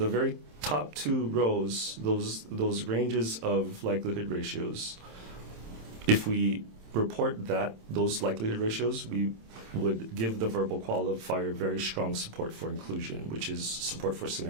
very top 2 rows, those ranges of likelihood ratios, if we report those likelihood ratios, we would give the verbal qualifier very strong support for inclusion, which is support for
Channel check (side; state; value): left; late; 27 ms